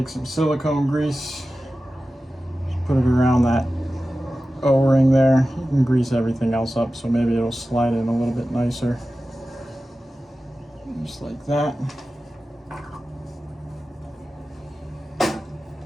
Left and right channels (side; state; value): both; normal; correlation 0.94